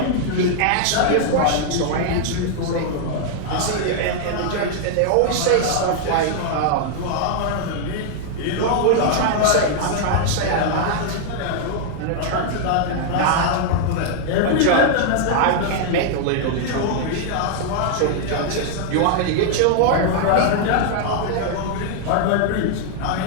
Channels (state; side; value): different; both; correlation 0.00